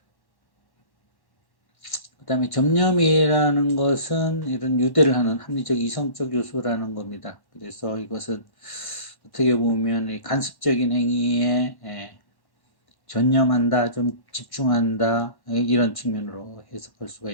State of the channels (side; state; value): right; late; 1.1 ms